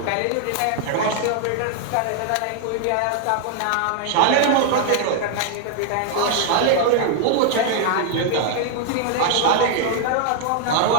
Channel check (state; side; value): different; both; correlation 0.00